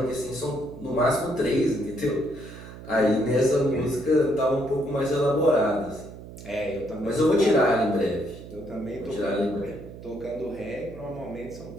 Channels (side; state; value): right; noise; hum, 14 dB below the sound